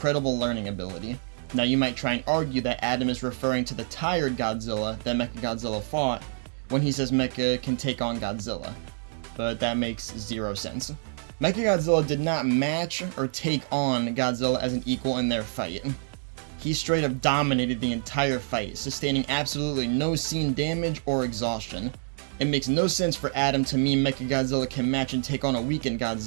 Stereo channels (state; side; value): silent; left; digital silence